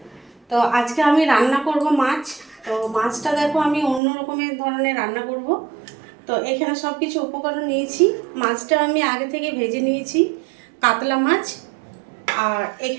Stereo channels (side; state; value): left; drops out; at 4.0 s